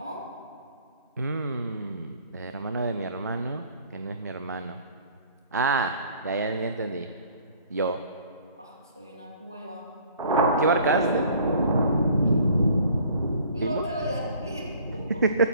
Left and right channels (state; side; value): inverted; both; correlation -0.54